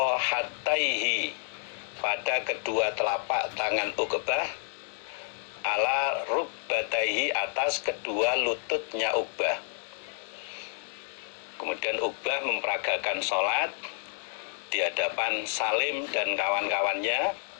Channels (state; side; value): silent; right; digital silence